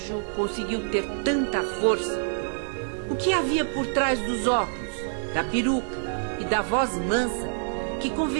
conseguiu ter tanta força? O que havia por trás dos óculos, da peruca e da voz mansa que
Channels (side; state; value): left; silent; digital silence